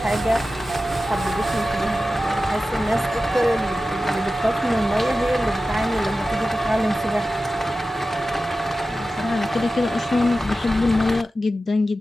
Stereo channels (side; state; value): both; normal; correlation 0.94